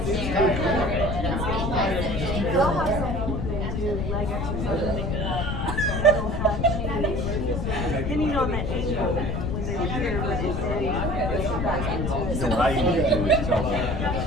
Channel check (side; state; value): left; noise; rumble, 1 dB below the sound